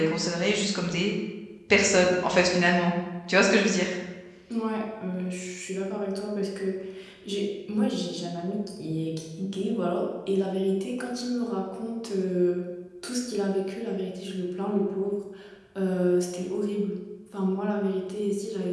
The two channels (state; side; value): identical; both; correlation 1.00